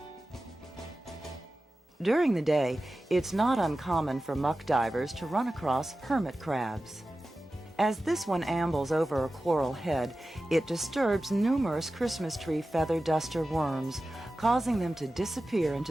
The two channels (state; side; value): normal; both; correlation 0.94